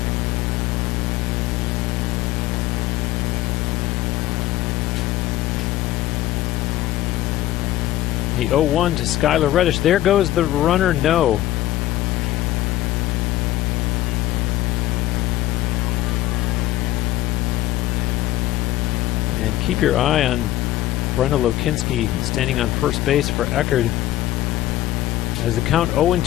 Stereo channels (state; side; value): quieter; right; 14.9 dB